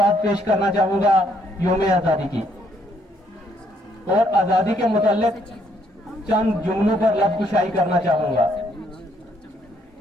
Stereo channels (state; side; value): normal; both; correlation 0.70